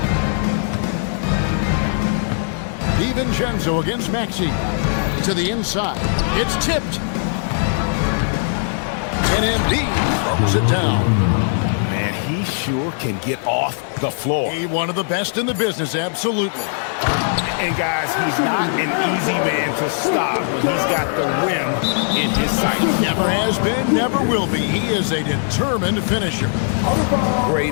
DiVincenzo against Maxey. To the inside. It's tipped. And Embiid throws it down. Man, he sure can get off the floor. He's one of the best in the business, absolutely. And guys, he's not an easy man to stop when he's got the rim in his sight. Never has been, never will be. He is a determined finisher. Great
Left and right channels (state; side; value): silent; right; 66 dB below the other